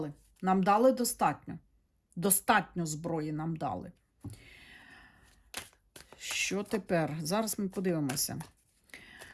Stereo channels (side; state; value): both; identical; correlation 1.00